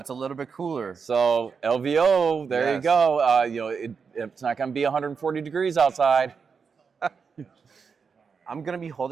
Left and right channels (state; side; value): quieter; left; 5.7 dB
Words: a little bit cooler. So LVO, there you go. It's not going to be 140 degrees outside. I'm going to be